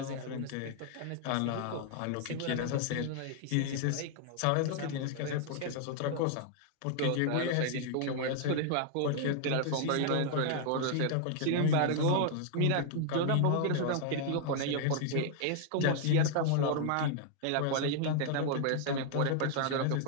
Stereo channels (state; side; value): different; both; correlation 0.00